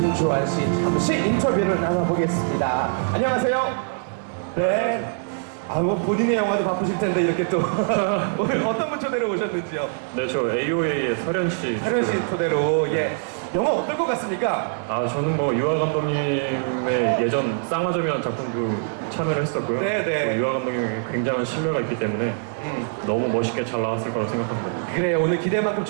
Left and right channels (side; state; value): left; silent; 57 dB below the other